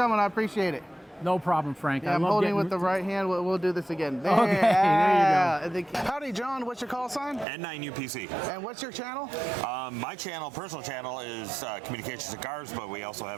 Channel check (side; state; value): left; drops out; at 7.5 s